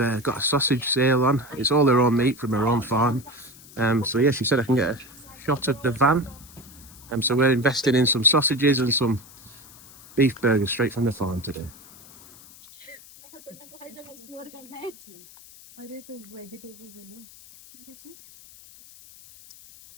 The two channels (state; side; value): noise; left; hiss, 21 dB below the sound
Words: a sausage sale on. It's all her own meat from her own farm. So yeah, she said I can get a shot of the van. So we're investing in some sausages and some beef burgers straight from the farm today.